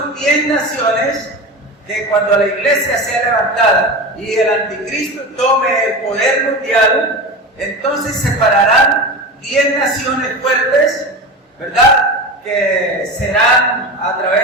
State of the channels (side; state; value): both; normal; correlation 0.26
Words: 10 naciones, que cuando la iglesia sea levantada y el anticristo tome el poder mundial, entonces separarán 10 naciones fuertes, ¿verdad?, que serán a